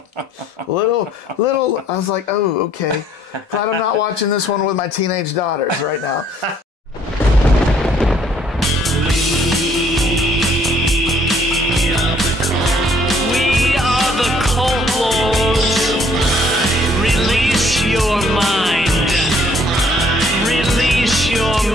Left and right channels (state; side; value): normal; both; correlation 0.62